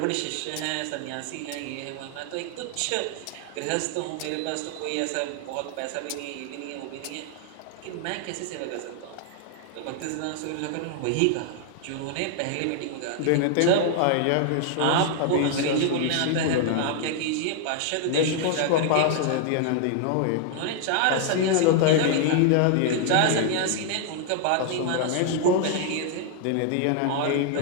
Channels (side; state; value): both; different; correlation 0.00